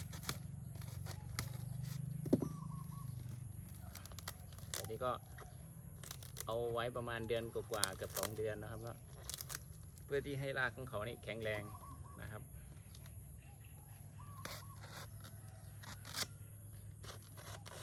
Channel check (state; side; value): identical; both; correlation 1.00